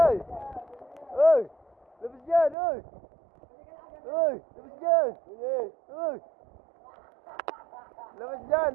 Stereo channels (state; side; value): drops out; left; at 2.6 s